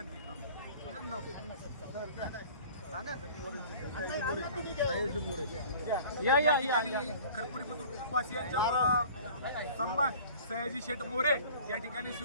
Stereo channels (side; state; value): both; inverted; correlation -0.46